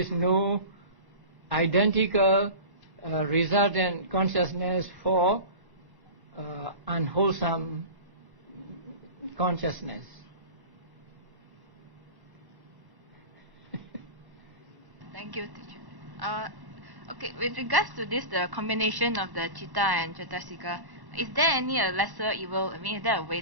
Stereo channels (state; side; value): late; left; 1.1 ms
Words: no identical resultant consciousness for unwholesome consciousness. Thank you, teacher. Okay, with regards to this, the combination of the chitta and cetasika, is there any lesser evil? I mean, is there a